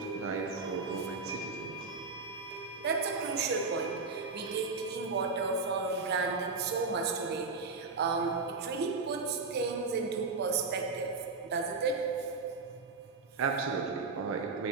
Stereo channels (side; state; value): left; quieter; 4.1 dB